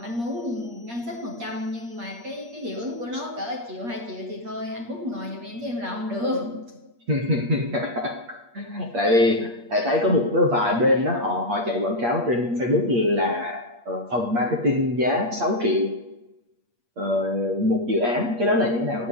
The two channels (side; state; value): left; late; 8.5 ms